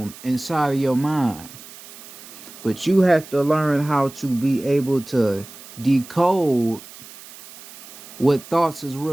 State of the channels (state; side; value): noise; right; hiss, 17 dB below the sound